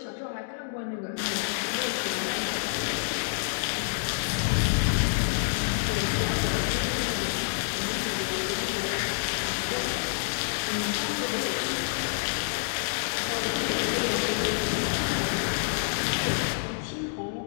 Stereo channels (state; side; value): silent; right; digital silence